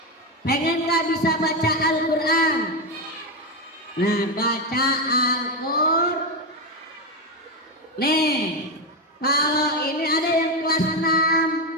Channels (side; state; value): both; normal; correlation 0.11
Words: Pengen gak bisa baca Al-Quran? Nah, baca Al-Quran. Nih, kalau ini ada yang kelas